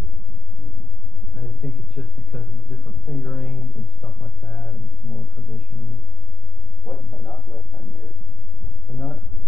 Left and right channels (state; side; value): normal; both; correlation 0.03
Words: I think it's just because of the different fingerings and stuff like that, and it's more traditional. What's the nut width on yours? The nut,